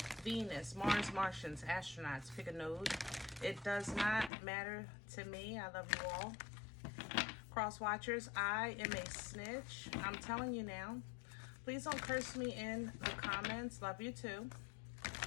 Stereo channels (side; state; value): right; drops out; at 4.3 s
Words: Venus, Mars, Martians, astronauts, pick a node. It does not matter to me. I love you all. Cross watchers, I am a snitch. I'm telling you now. Please don't curse me in the comments. Love you too.